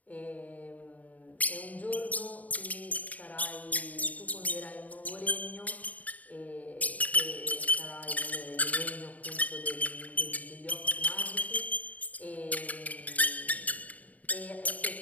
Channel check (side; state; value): right; late; 0.073 ms